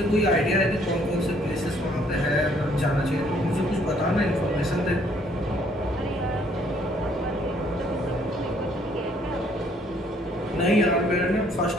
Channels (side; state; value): both; normal; correlation 0.64